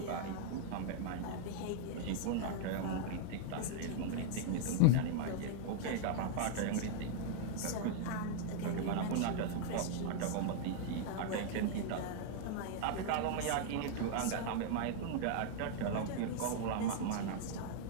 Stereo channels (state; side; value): different; both; correlation -0.01